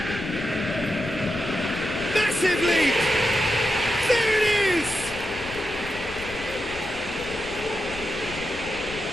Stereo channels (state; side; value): noise; left; rumble, 16 dB below the sound